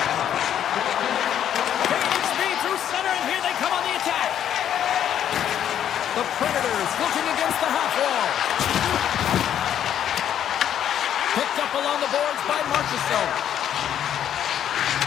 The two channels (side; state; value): right; quieter; 10.0 dB